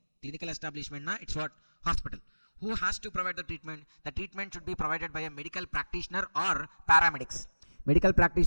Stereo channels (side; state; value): both; inverted; correlation -1.00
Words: Clinical establishment, it's what? Hospital. Who has to provide the treatment? The treatment should be provided by a medical practitioner or paramedics. Medical